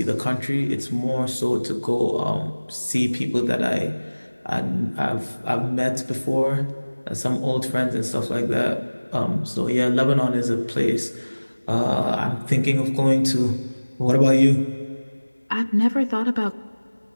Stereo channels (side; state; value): both; inverted; correlation -1.00